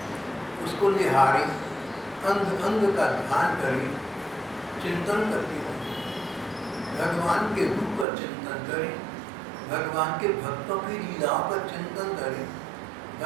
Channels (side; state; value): left; drops out; at 8.1 s